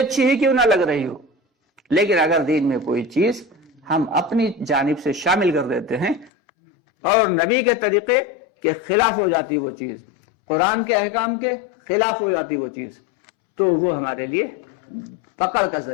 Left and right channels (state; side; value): drops out; right; at 6.3 s